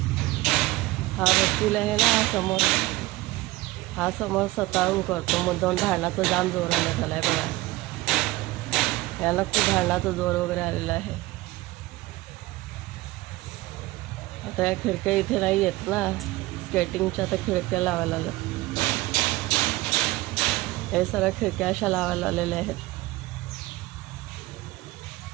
हा वकील आहे ना, हा समोर स्वतःहून करतो. मुद्दाम भांडणाचं जाम जोर आला आहे बघा. याला खूप भांडणाचा जोर वगैरे आलेला आहे. आता या खिडक्या इथे नाही येत ना, स्केटिंगच्या आता खिडक्या लावायला लागल्या. हे सगळ्या खिडक्या अशा लावायला आलेल्या आहेत.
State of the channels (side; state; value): left; quieter; 19.3 dB